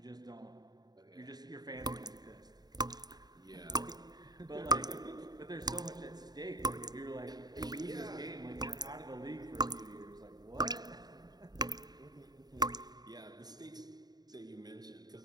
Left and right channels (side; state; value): left; late; 0.19 ms